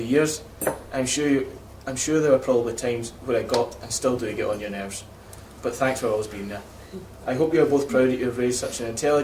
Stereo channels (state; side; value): identical; both; correlation 1.00